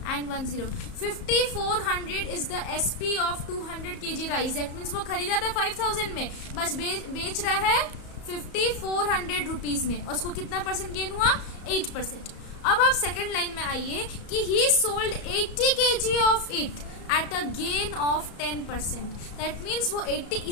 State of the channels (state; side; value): late; right; 34 ms